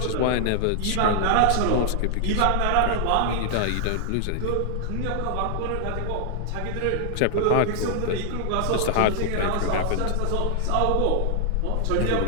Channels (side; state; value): both; different; correlation 0.00